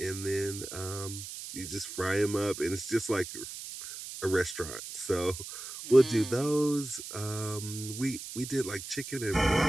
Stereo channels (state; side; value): noise; right; hiss, 10 dB below the sound